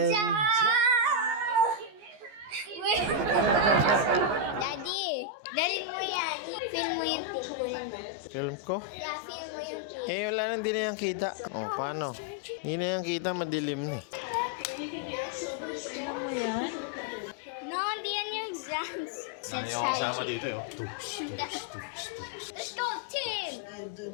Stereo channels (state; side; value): late; left; 14 ms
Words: Daddy, dali mo yan. Film mo yung picture mo. Film ko? Yeah, film mo yung picture. Wala na, hindi na yan kita. Paano? Hindi na yan kita, madilim na eh. dance. Let's Ayaw try kasama to dito eh. Let's go, team!